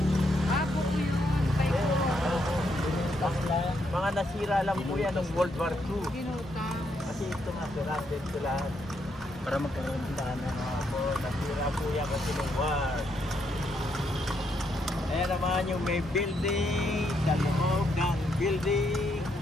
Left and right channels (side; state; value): both; normal; correlation 0.77